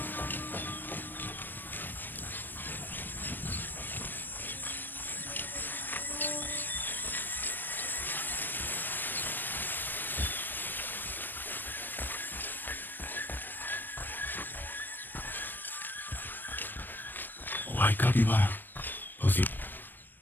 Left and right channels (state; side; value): late; right; 0.093 ms